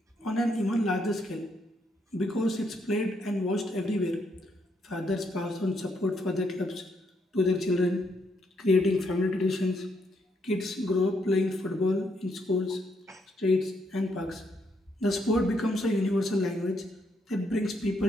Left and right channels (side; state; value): both; normal; correlation 0.75